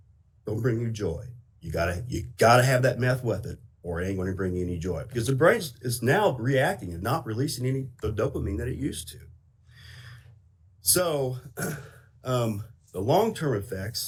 don't bring you joy. You gotta have that meth with it, or it ain't going to bring you any joy, because the brain is now reacting and not releasing any the dopamine that it used to. So the long-term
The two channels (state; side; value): identical; both; correlation 1.00